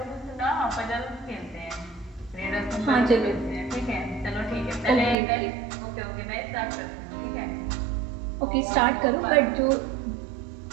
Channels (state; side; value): drops out; left; at 5.2 s